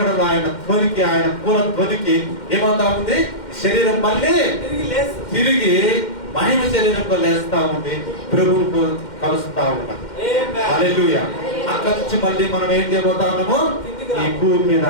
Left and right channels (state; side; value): late; right; 2.1 ms